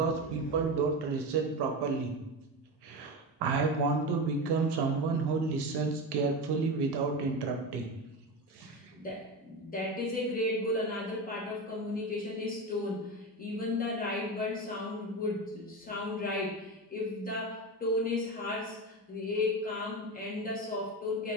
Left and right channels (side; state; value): both; normal; correlation 0.21